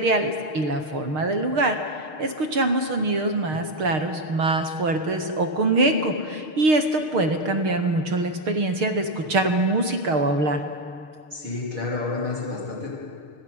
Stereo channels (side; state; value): left; late; 6.5 ms